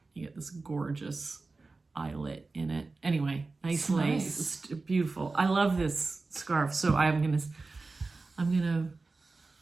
You get this gorgeous eyelet in it. Anyway, nice lace. It's beautiful. I love this scarf. So I'm gonna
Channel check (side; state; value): left; quieter; 3.7 dB